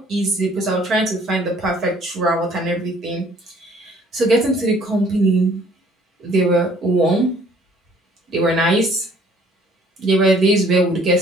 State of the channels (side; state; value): both; normal; correlation 0.58